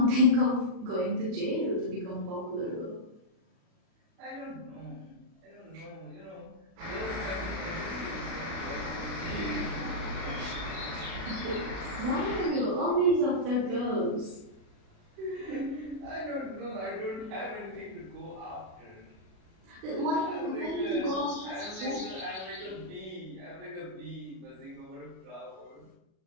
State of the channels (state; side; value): late; left; 37 ms